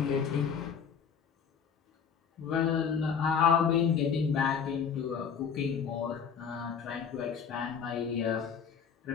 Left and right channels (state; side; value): quieter; right; 6.9 dB